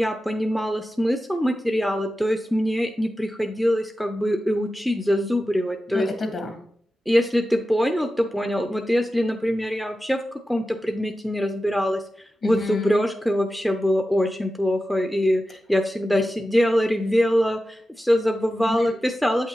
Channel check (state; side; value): normal; both; correlation 0.93